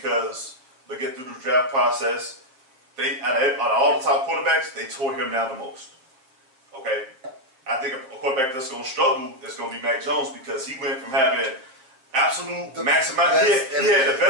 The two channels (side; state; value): left; late; 7.6 ms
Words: looking through the draft process, they out of all the top quarterbacks, they tore him down the most. Okay, I think a quarterback that's going to struggle is going to be Mac Jones because he went from having absolute The maximum. best He had the